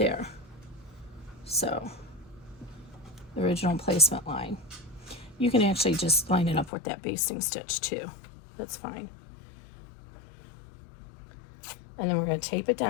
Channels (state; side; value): drops out; right; at 6.7 s